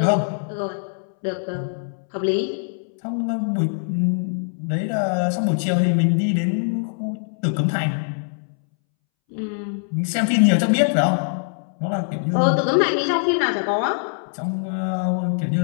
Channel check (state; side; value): silent; right; 64 dB below the other